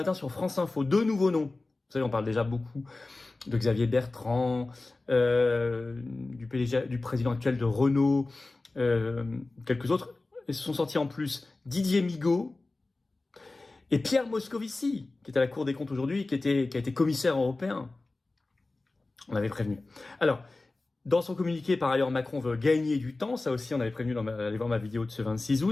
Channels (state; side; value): quieter; right; 3.2 dB